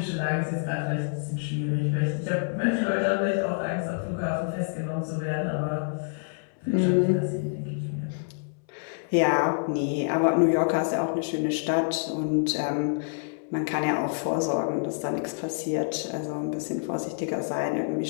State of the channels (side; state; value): right; silent; 60 dB below the other